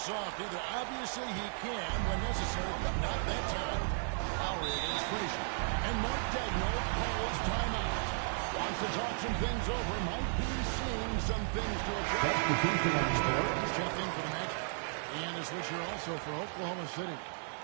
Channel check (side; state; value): left; silent; 55 dB below the other